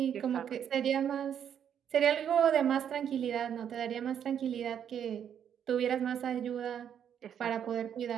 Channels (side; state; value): left; quieter; 8.8 dB